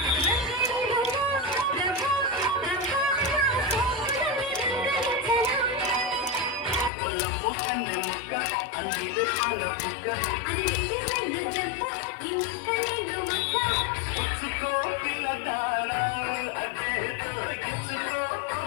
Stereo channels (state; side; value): drops out; right; at 6.9 s